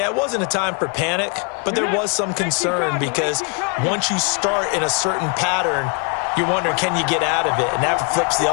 it wasn't a time for panic, but there was some concern because once you start in a certain pattern, you're wondering, can you get out of it? And that flips the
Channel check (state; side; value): quieter; right; 35.4 dB